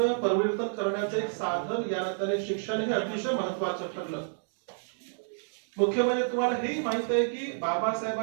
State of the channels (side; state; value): left; silent; digital silence